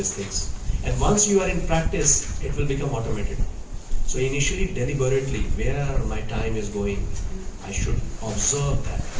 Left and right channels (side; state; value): both; identical; correlation 1.00